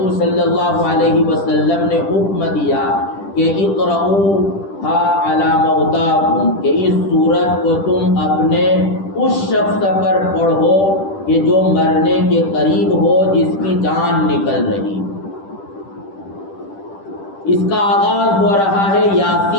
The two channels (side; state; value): right; late; 10 ms